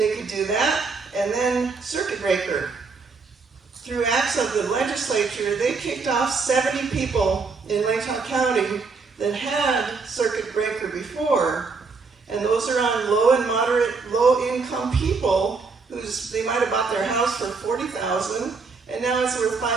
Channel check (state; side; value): quieter; left; 4.6 dB